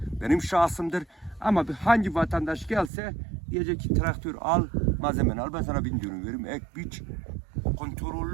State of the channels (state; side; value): drops out; left; at 2.9 s